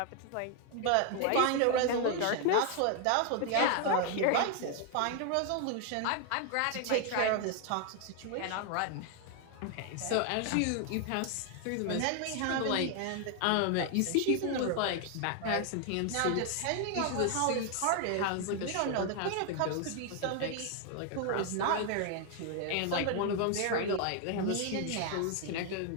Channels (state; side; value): different; both; correlation 0.00